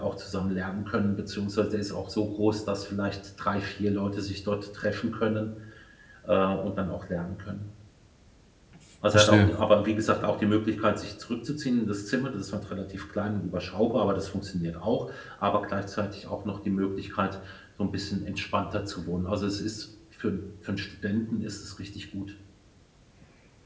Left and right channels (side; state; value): both; identical; correlation 1.00